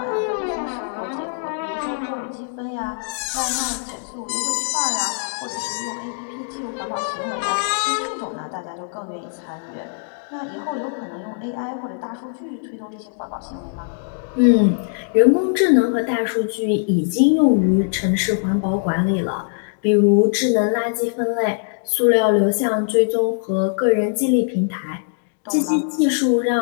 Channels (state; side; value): silent; right; digital silence